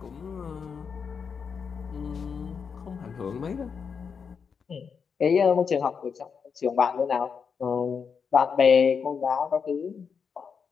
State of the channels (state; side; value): quieter; right; 6.2 dB